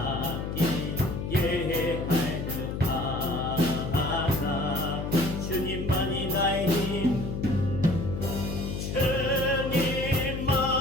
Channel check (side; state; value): left; noise; hum, 4 dB below the sound